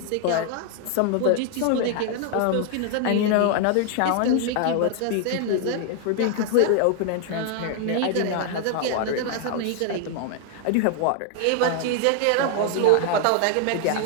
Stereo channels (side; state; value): both; different; correlation 0.00